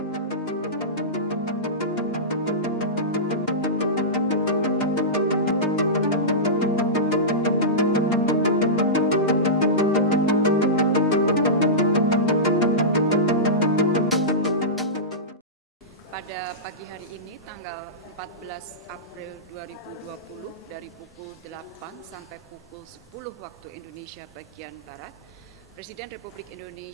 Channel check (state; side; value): normal; both; correlation -0.17